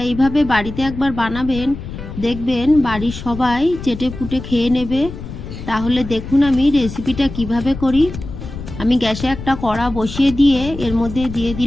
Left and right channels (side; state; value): left; noise; rumble, 10 dB below the sound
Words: এইভাবে বাড়িতে একবার বানাবেন, দেখবেন বাড়ির সবাই চেটে পুটে খেয়ে নেবে। তাহলে দেখুন আমি রেসিপিটা কিভাবে করি। আমি গ্যাসে একটা কড়া বসিয়ে দিয়ে এর মধ্যে দিয়ে